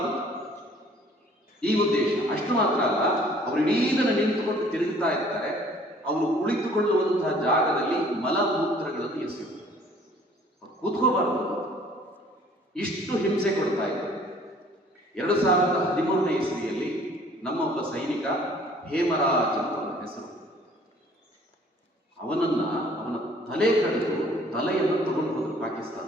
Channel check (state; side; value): normal; both; correlation 0.55